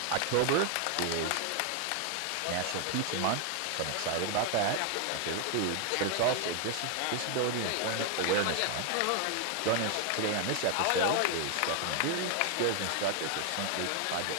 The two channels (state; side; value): different; both; correlation 0.01